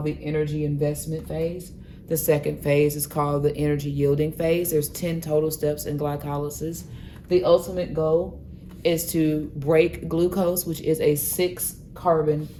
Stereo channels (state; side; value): identical; both; correlation 1.00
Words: the energy investment phase. The second phase is called the energy yielding phase. There's 10 total steps in glycolysis. The ultimate goal is to break glucose, which is a 6-carbon